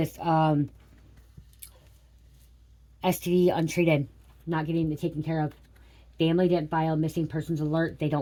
STD untreated, not getting it taken care of. Family didn't file missing persons alert. They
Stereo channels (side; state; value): both; identical; correlation 1.00